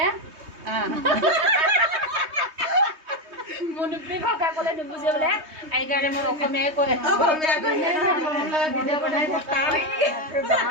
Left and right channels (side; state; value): left; late; 3.2 ms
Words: মনুপি ভাষা কলে নুবুজে বলে আইগাৰে মোৰ অসমীয়া কৈ আছে ভিডিও বনাই থাকা